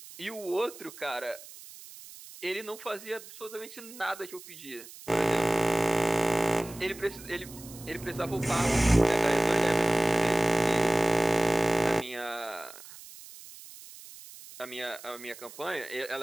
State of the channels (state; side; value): noise; right; hiss, 17 dB below the sound